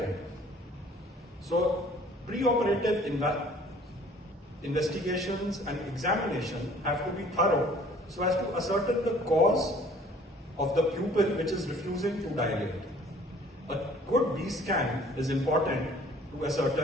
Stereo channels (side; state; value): both; normal; correlation 0.54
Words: So, preoperative investigations and examination have to be thorough so as to ascertain the cause of the pupil which is refusing to dilate. A good B scan is important to